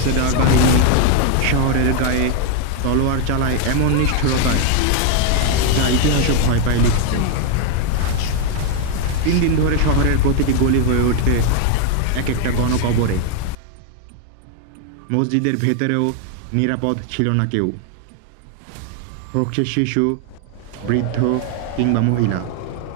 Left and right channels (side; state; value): both; different; correlation 0.01